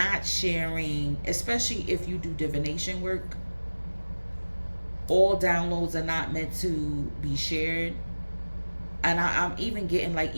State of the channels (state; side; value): inverted; both; correlation -1.00